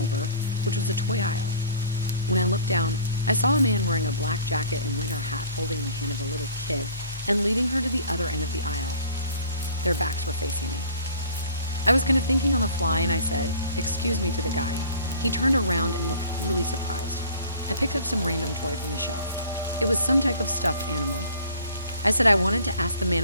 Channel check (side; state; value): both; inverted; correlation -0.47